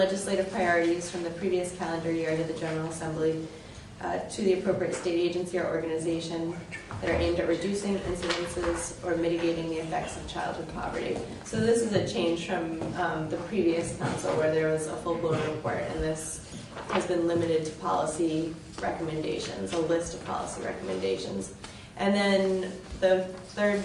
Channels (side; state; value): both; identical; correlation 1.00